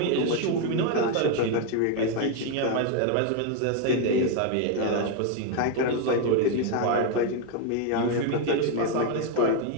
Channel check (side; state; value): both; different; correlation 0.01